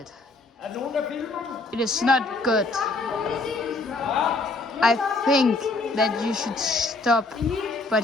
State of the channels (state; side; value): quieter; right; 3.4 dB